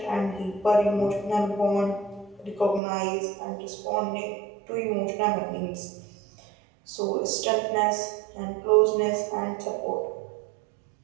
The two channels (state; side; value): drops out; left; at 2.8 s